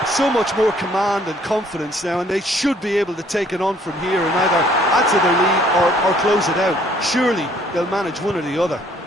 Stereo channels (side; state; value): both; normal; correlation 0.61